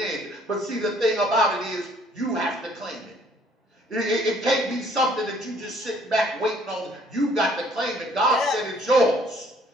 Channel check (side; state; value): both; normal; correlation 0.60